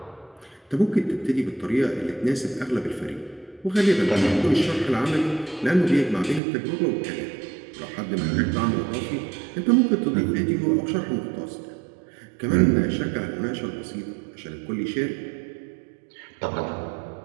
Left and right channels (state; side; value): drops out; left; at 6.4 s